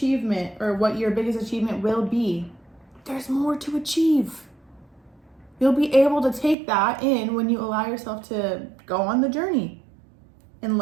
or what your biggest achievement will be, there's more to achieve. You'll be able to take that in when you allow yourself to go on the journey. and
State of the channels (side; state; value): left; drops out; at 6.6 s